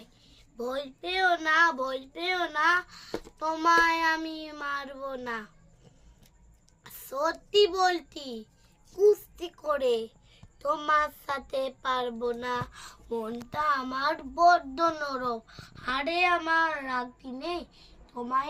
ভয় পেও না, ভয় পেও না, তোমায় আমি মারবো না। সত্যি বলছি কুস্তি করে তোমার সাথে পারবো না। মনটা আমার বড্ড নরম, হাড়ে আমার রাখি নেই,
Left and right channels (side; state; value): both; identical; correlation 1.00